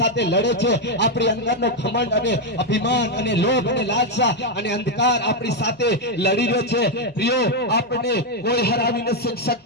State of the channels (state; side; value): normal; both; correlation 0.03